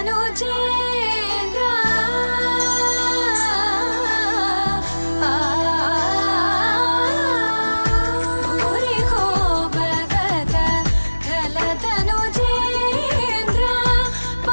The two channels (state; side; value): inverted; both; correlation -1.00